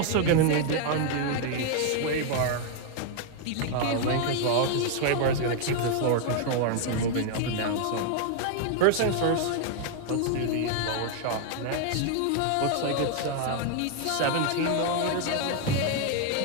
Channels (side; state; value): both; different; correlation 0.00